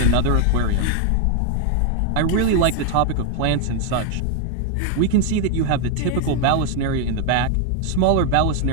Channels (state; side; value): different; both; correlation 0.01